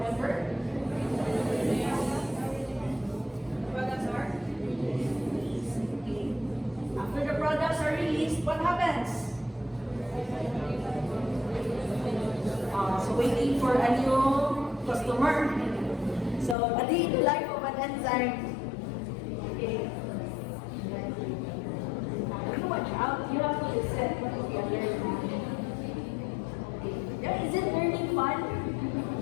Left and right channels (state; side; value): drops out; right; at 16.6 s